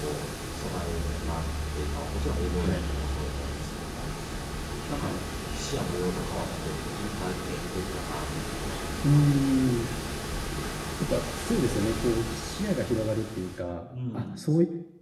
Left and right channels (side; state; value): both; identical; correlation 1.00